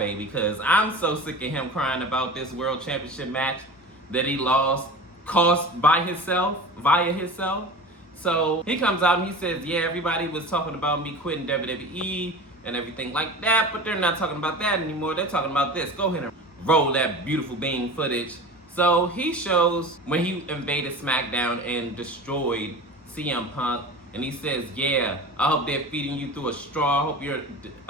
because I'm so sick of him crying about this World Championship match that he caused via himself. So he comes out and he says, yeah, everybody was talking about me quitting WWE and everything like that, but they're not talking about that anymore. They're talking about this. Go ahead and roll that beautiful bean footage. So he shows when he invaded SmackDown and destroyed CM Punk, and he says, yeah, I hope they're feeding you through a straw. I hope you're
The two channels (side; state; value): both; normal; correlation 0.34